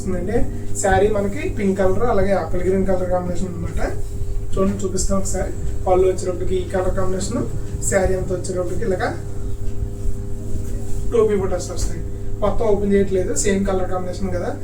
శారీ మనకి పింక్ కలర్ అలాగే ఆపిల్ గ్రీన్ కలర్ కాంబినేషన్ అనమాట. చూడండి, చూపిస్తాం ఒకసారి. పళ్ళు వచ్చేటప్పటికి ఈ కలర్ కాంబినేషన్, శారీ అంతా వచ్చేటప్పటికి ఇలాగా టోపీ బుటస్ వస్తాయి. మొత్తం ఓపెన్ చేయట్లేదు, సేమ్ కలర్ కాంబినేషన్ కదా.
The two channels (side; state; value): both; identical; correlation 1.00